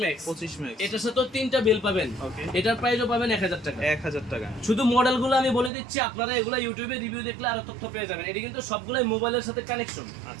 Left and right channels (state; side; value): drops out; left; at 5.7 s